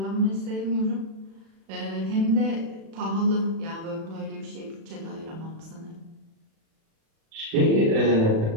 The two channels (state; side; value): late; left; 36 ms